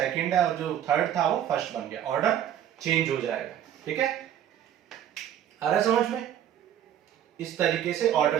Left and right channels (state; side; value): quieter; left; 10.4 dB